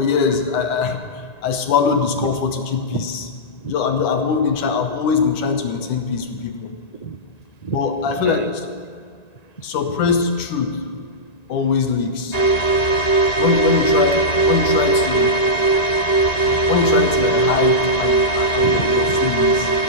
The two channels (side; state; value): right; late; 1.9 ms